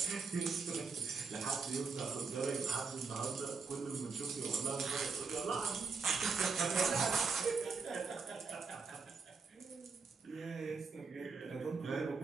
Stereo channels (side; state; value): left; quieter; 4.8 dB